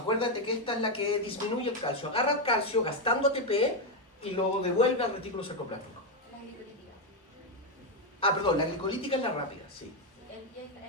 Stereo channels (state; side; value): normal; both; correlation 0.05